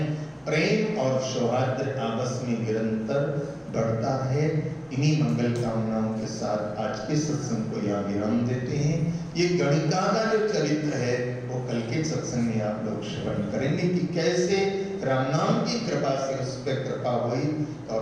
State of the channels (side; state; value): both; identical; correlation 1.00